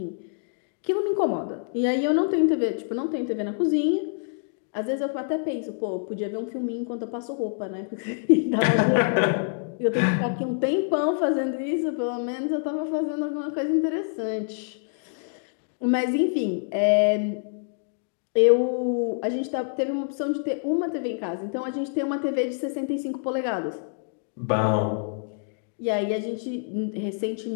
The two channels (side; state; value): right; silent; digital silence